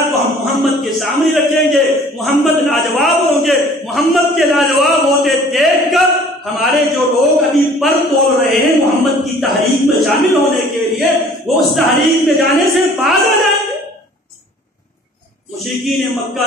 کو ہم محمد کے سامنے رکھیں گے، محمد لاجواب ہوں گے۔ محمد کے لاجواب ہوتے دیکھ کر ہمارے جو لوگ ابھی پر تول رہے ہیں محمد کی تحریک میں شامل ہونے کے لیے، وہ اس تحریک میں جانے سے باز آ جائیں گے۔ مشرکین مکہ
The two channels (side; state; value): both; normal; correlation 0.51